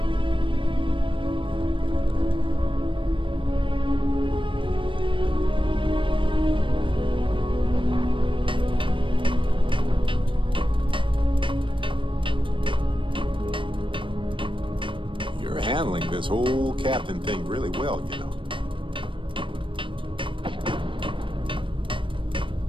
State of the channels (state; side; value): late; left; 0.25 ms